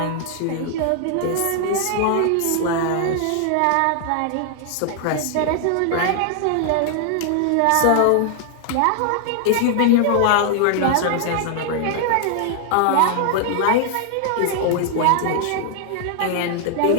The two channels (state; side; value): different; both; correlation 0.00